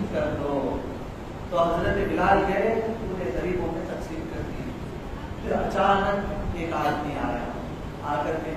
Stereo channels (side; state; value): both; identical; correlation 1.00